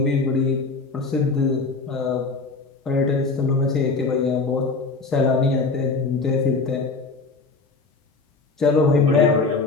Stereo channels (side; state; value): right; quieter; 4.0 dB